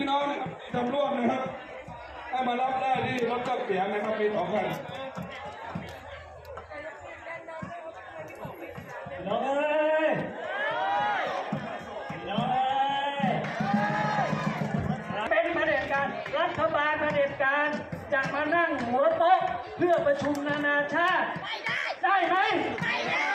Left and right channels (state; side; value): identical; both; correlation 1.00